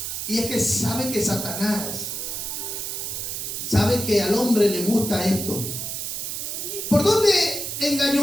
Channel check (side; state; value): right; noise; hiss, 4 dB below the sound